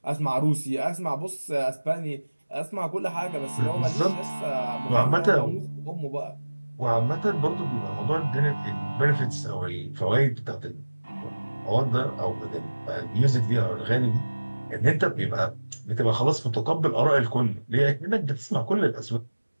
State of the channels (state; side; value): inverted; both; correlation -1.00